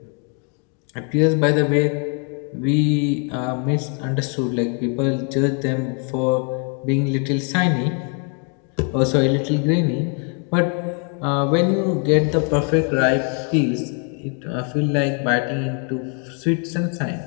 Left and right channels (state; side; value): quieter; right; 39.9 dB